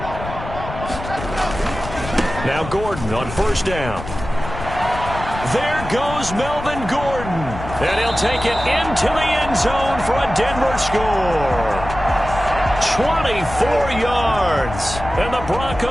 Now Gordon on first down. There goes Melvin Gordon. And he'll take it into the end zone for a Denver score. 24 yards. And the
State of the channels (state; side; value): noise; left; rumble, 10 dB below the sound